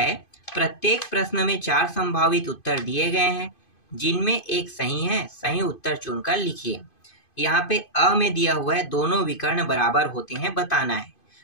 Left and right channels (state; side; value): late; right; 2.5 ms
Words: प्रत्येक प्रश्न में 4 संभावित उत्तर दिए गए हैं जिनमें एक सही है, सही उत्तर चुनकर लिखिए। यहाँ पे अ में दिया हुआ है दोनों विकर्ण बराबर होते हैं, बताना है।